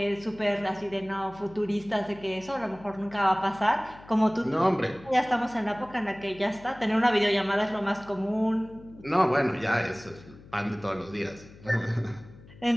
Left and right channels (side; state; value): left; noise; hum, 21 dB below the sound